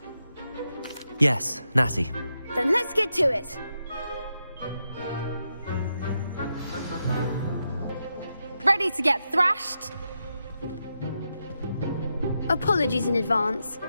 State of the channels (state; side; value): inverted; both; correlation -0.85